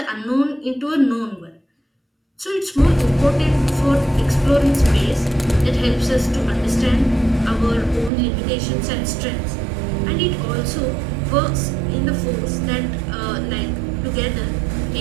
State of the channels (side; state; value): left; drops out; at 8.1 s